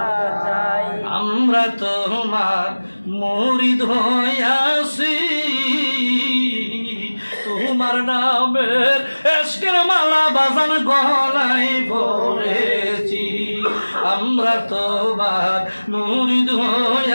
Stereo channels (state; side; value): inverted; both; correlation -1.00